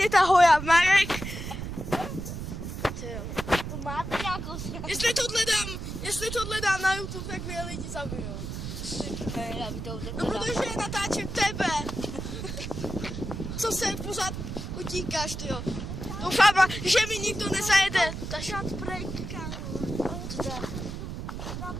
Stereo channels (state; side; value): noise; right; rumble, 6 dB below the sound